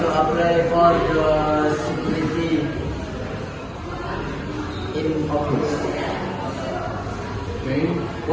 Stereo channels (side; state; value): both; identical; correlation 1.00